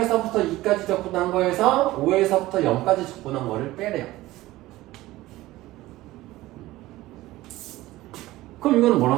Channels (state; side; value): quieter; left; 17.4 dB